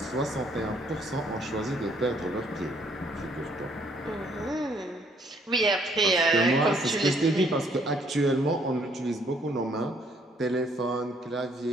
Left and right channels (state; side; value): normal; both; correlation 0.65